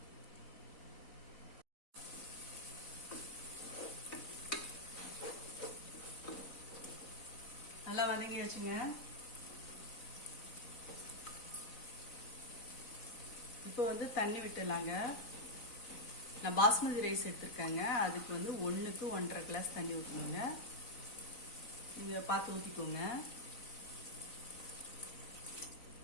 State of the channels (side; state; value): right; late; 3.9 ms